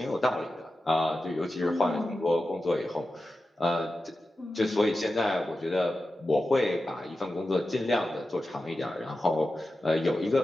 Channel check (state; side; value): normal; both; correlation 0.92